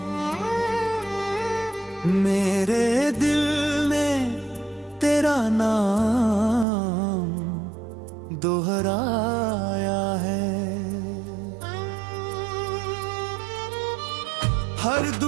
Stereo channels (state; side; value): drops out; left; at 6.7 s